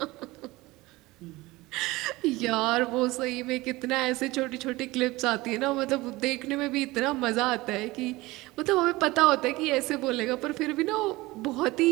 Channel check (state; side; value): quieter; left; 20.4 dB